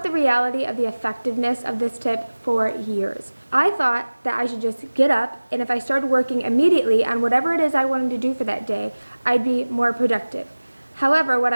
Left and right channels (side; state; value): both; inverted; correlation -1.00